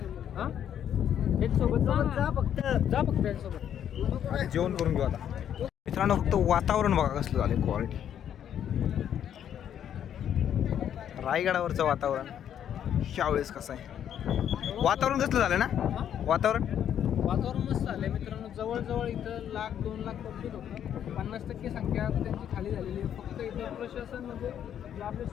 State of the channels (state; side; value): quieter; right; 9.7 dB